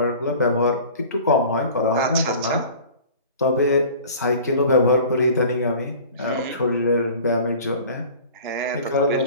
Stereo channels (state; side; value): inverted; both; correlation -0.44